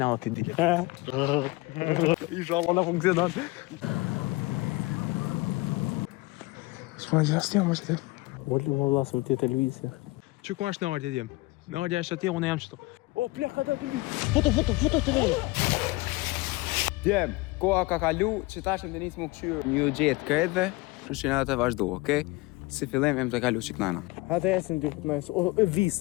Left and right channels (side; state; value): right; quieter; 23.0 dB